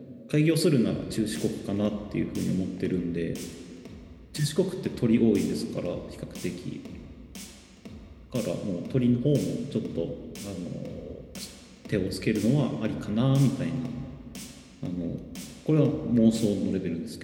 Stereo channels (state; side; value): identical; both; correlation 1.00